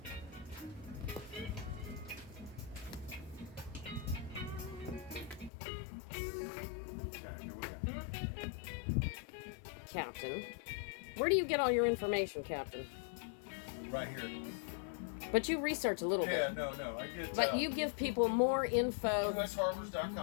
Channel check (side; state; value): right; drops out; at 5.5 s